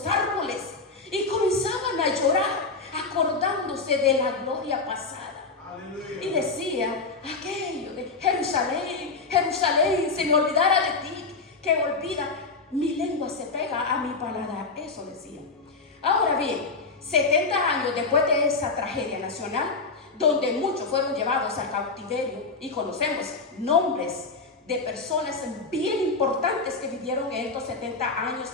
árboles, y comenzaban a llorar, acordándose de la gloria pasada. Aleluya. Y decían aquello de: Jerusalén, Jerusalén, si me olvidara de ti, que olvida, mi lengua se pega a mi paladar. Eso decían. Ahora bien, 70 años después de esa tragedia nacional, donde muchos fueron llevados al cautiverio, y conocemos nombres de personas bien importantes que vivieron en estos 70 años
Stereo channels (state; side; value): quieter; right; 4.0 dB